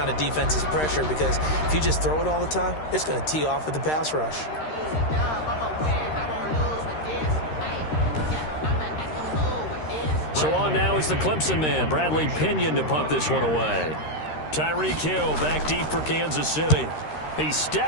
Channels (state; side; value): late; right; 13 ms